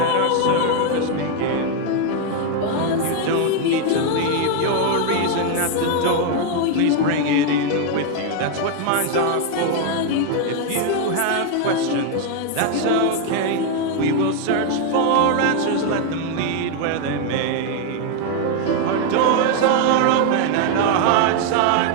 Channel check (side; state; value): both; different; correlation 0.01